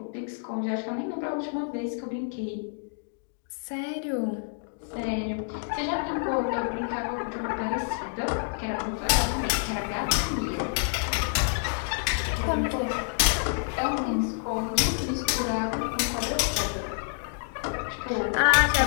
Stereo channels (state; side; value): silent; right; digital silence